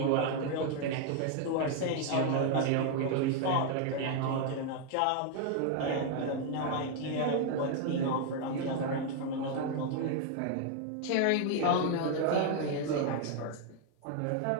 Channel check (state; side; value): different; both; correlation 0.00